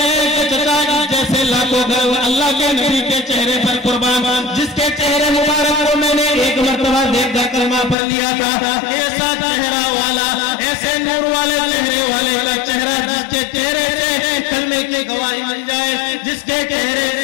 हैं कि चचा जैसे लाखों घर अल्लाह के नबी के चेहरे पर कुर्बान, जिसके चेहरे मुबारक को मैंने एक मर्तबा देखकर कलमा पढ़ लिया था, ऐसा चेहरा वाला, ऐसे नूर वाले चेहरे वाले का चेहरा, जिसके चेहरे से कलमे की गवाही मिल जाए, जिसके चेहरे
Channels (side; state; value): right; drops out; at 8.0 s